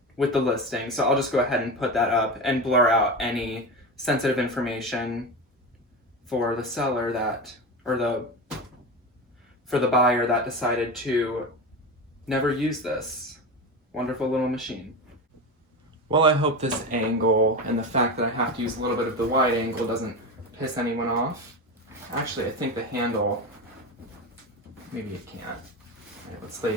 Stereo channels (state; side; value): normal; both; correlation 0.23